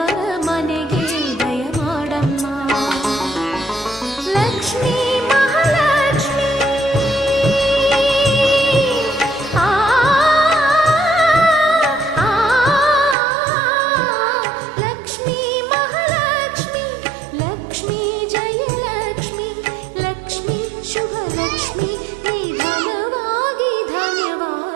ಮನೆಗೆ ದಯ ಮಾಡಮ್ಮ. ಲಕ್ಷ್ಮೀ ಮಹಾಲಕ್ಷ್ಮೀ ಲಕ್ಷ್ಮೀ ಮಹಾಲಕ್ಷ್ಮಿ, ಲಕ್ಷ್ಮೀ ಜಯಲಕ್ಷ್ಮಿ, ಲಕ್ಷ್ಮೀ ಶುಭಲಕ್ಷ್ಮಿ, ನಿಧಾನವಾಗಿ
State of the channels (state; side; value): drops out; left; at 13.2 s